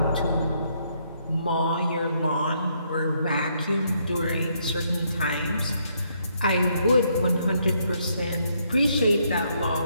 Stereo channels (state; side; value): inverted; both; correlation -0.73